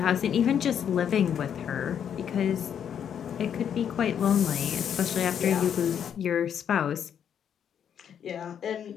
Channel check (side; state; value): right; quieter; 8.6 dB